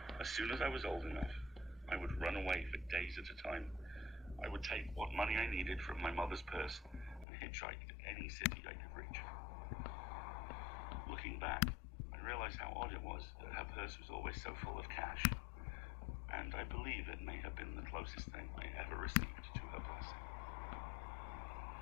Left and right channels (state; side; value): drops out; right; at 7.2 s